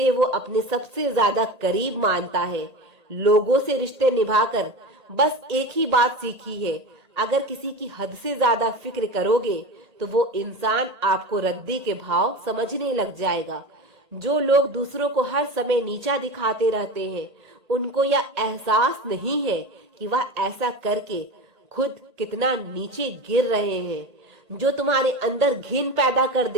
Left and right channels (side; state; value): left; late; 1.8 ms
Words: वो अपने सबसे ज्यादा करीब मानता है। लोगों से रिश्ते निभाकर बस एक ही बात सीखी है, अगर किसी की हद से ज्यादा फिक्र करोगे तो वो इंसान आपको रद्दी के भाव समझने लग जाएगा। जो लोग दूसरों को हर समय नीचा दिखाते रहते हैं, उनको यह एहसास नहीं है कि वह ऐसा करके खुद कितना नीचे गिर रहे हैं। जो तुम्हारे अंदर घिन पैदा कर